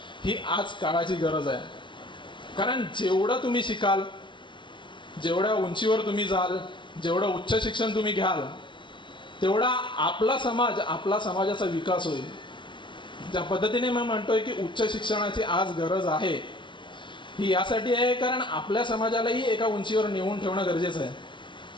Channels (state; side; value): late; right; 0.24 ms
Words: ही आज काळाची गरज आहे. कारण जेवढं तुम्ही शिकाल, जेवढ्या उंचीवर तुम्ही जाल, जेवढं उच्च शिक्षण तुम्ही घ्याल, तेवढा आपला समाजाचा विकास होईल. ज्या पद्धतीने मी म्हणतोय की उच्च शिक्षणाची आज गरज आहे, ही यासाठी आहे कारण आपल्या समाजालाही एका उंचीवर नेऊन ठेवणं गरजेचं आहे.